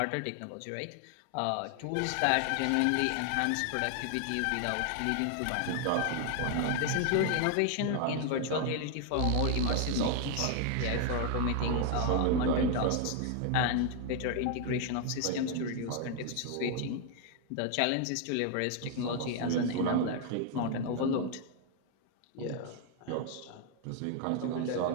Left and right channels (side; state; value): both; different; correlation 0.00